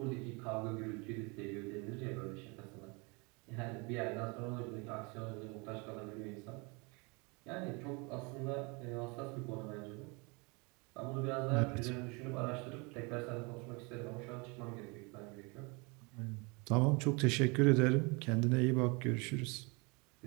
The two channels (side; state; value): left; quieter; 29.6 dB